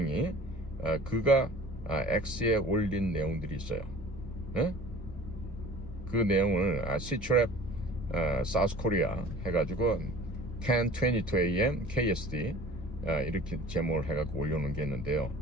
그가 X에 올린 내용들이 있어요. 네? 그 내용을 시트랩 사우스 코리아 해가지고 10:22 a.m. KSD 이렇게 제목을 해갖고 올려놓은 게 있는데요.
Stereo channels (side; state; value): both; normal; correlation 0.45